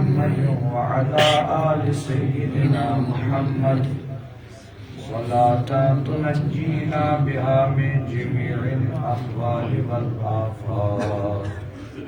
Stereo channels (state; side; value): identical; both; correlation 1.00